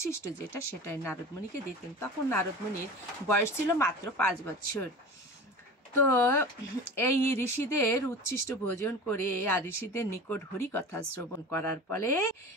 যেটা, সেটাই নারদ মুনিকে দিতেন। তখন নারদ মুনির বয়স ছিল মাত্র 5 বছর। তো এই ঋষিদের উচ্ছিষ্ট ভোজন করে আর ঋষিদের নিকট হরি কথা শ্রবণ করার ফলে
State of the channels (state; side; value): normal; both; correlation 0.35